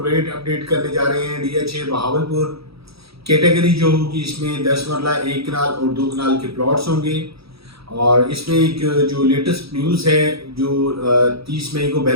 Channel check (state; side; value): late; left; 0.77 ms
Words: रेट अपडेट करने जा रहे हैं DH बहावलपुर। कैटेगरी जो होगी इसमें 10 मरला 1 कनाल और 2 कनाल के प्लॉट्स होंगे। और इसमें एक जो लेटेस्ट न्यूज़ है, जो 30 मई को